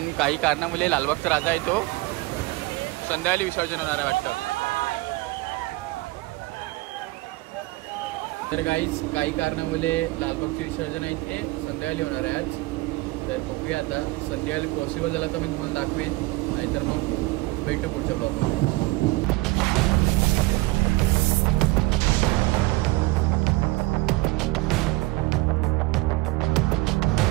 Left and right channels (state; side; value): quieter; left; 21.3 dB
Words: काही कारणामुळे लालबागचा राजा आहे तो संध्याकाळी विसर्जन होणार आहे वाटतं. तर काही कारणामुळे लालबागचे विसर्जन आहे ते संध्याकाळी होणार आहे आज. तर बघूया आता, संध्याकाळी पॉसिबल झालं तर मी तुम्हाला दाखवेन, नाहीतर मग भेटू पुढच्या ब्लॉगमध्ये.